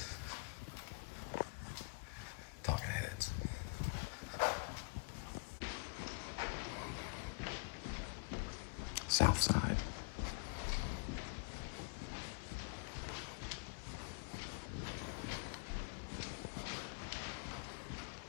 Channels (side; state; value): right; quieter; 30.4 dB